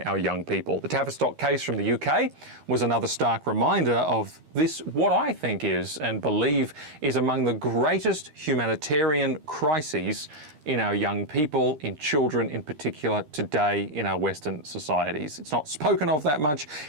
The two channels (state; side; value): late; left; 13 ms